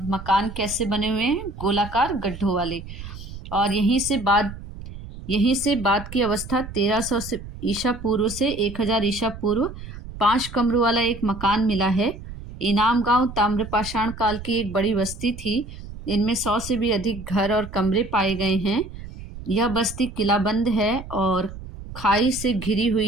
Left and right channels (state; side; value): noise; right; rumble, 12 dB below the sound